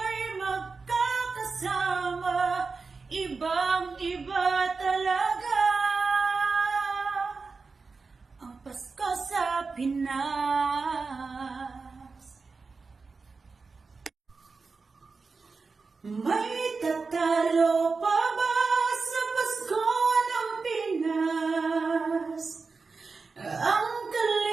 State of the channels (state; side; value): quieter; left; 4.4 dB